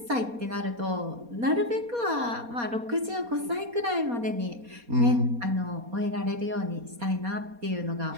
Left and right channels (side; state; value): left; late; 4.2 ms